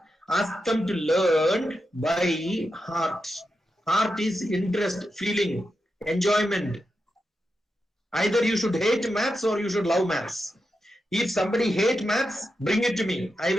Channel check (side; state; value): both; normal; correlation 0.88